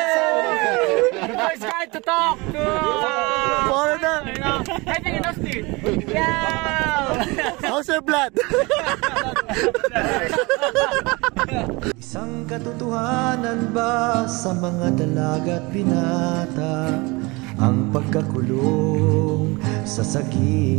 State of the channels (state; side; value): quieter; left; 25.3 dB